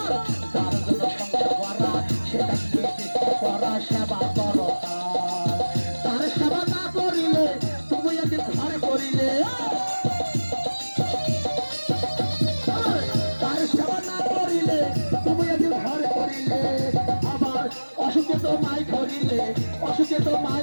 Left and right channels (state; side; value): inverted; both; correlation -1.00